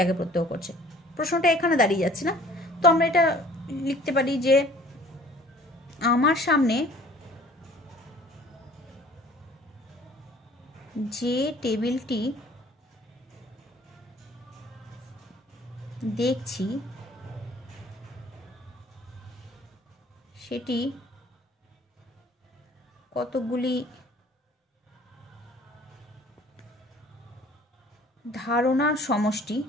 প্রত্যক্ষ করছে? প্রশ্নটা এখানে দাঁড়িয়ে যাচ্ছে না? তো আমরা এটা লিখতে পারি যে আমার সামনে যে টেবিলটি দেখছি সেটি কতগুলি ধারণার সমষ্টি,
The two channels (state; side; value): normal; both; correlation 0.52